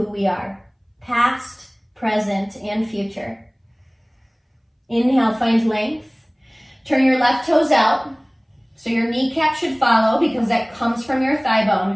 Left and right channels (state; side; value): identical; both; correlation 1.00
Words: we are, past, present, and future. Inhale, find length. Turn your left toes out. So your kneecap should follow because that comes from your thigh